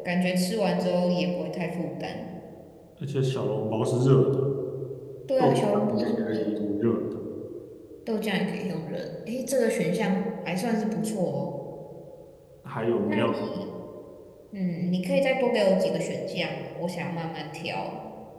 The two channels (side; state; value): both; identical; correlation 1.00